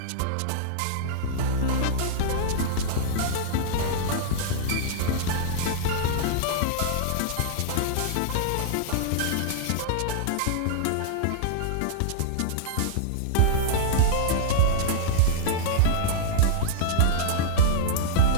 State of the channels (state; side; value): different; both; correlation -0.02